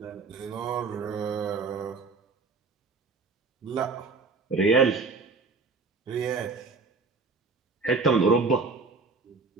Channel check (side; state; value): left; quieter; 4.2 dB